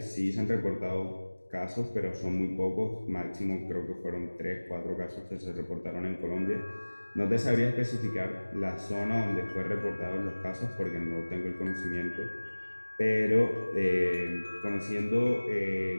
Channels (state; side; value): inverted; both; correlation -1.00